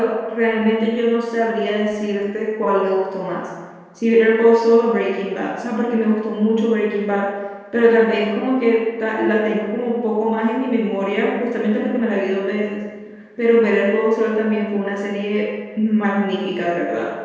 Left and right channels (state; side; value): identical; both; correlation 1.00